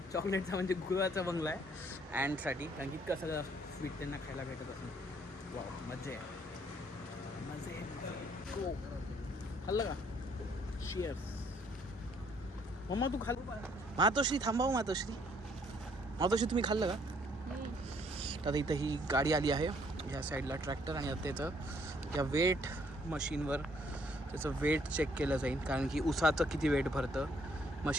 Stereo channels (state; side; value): normal; both; correlation 0.65